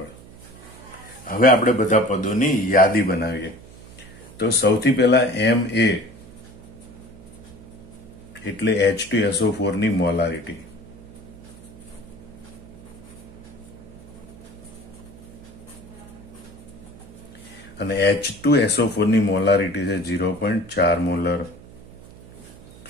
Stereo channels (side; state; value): right; noise; hum, 19 dB below the sound